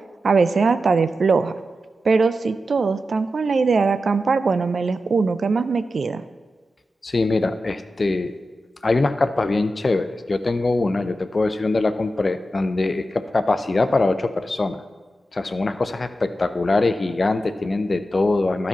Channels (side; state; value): both; normal; correlation 0.90